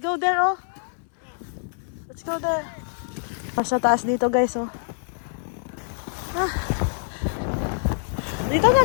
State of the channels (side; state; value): right; silent; 60 dB below the other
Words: go there, oh. Let's go there. Sa taas dito, guys, oh. Ah. Dito na